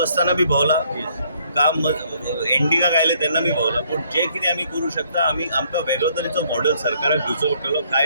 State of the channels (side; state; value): both; inverted; correlation -0.66